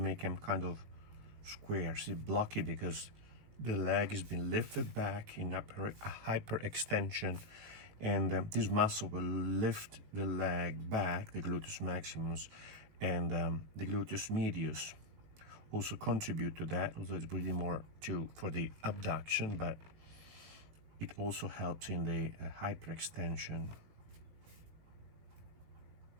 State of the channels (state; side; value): late; left; 19 ms